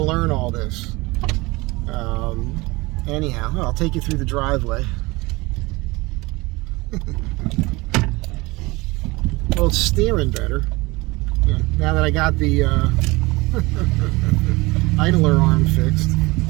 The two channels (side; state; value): left; quieter; 22.9 dB